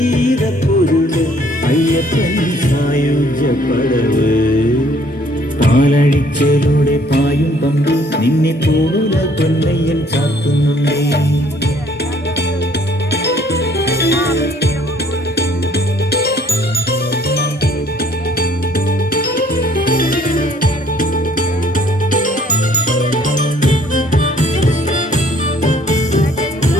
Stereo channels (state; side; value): normal; both; correlation 0.61